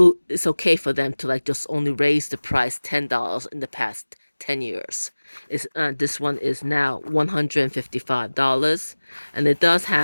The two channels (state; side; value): inverted; both; correlation -1.00